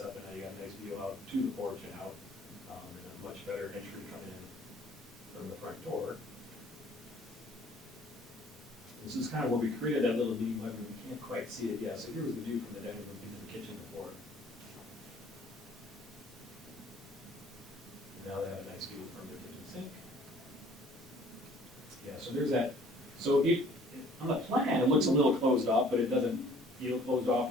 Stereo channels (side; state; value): both; normal; correlation 0.55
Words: and now you got a nice view out to the porch and out, and a much better entry coming in from the front door. This is kind of where we created that little meeting room. We can't quite see it yet. So here was the view from the dining room into the kitchen before. Now they have a nice view from their kitchen sink. Yeah, so there's that. So on the plan, it looks a little closed off, but it doesn't feel closed off